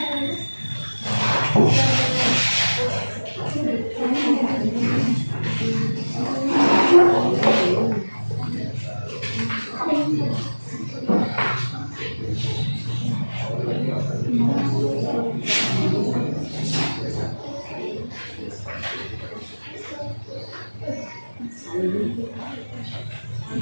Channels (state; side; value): inverted; both; correlation -1.00